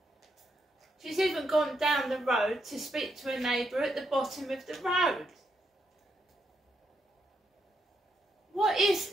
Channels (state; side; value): normal; both; correlation 0.79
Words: She's even gone down the road to speak to a neighbour at the bottom of the road. What is